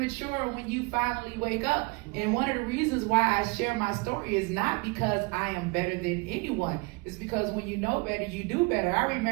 and when you finally wake up. And one of the reasons why I share my story is not because I am better than anyone. It's because when you know better, you do better. I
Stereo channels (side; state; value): left; quieter; 28.6 dB